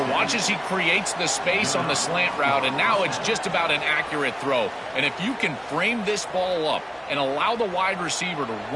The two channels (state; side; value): identical; both; correlation 1.00